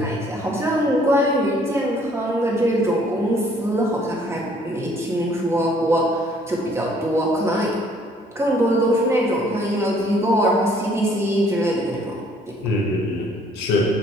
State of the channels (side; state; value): both; normal; correlation 0.61